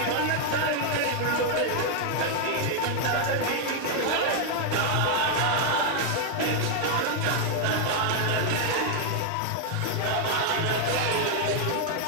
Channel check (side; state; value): both; different; correlation 0.00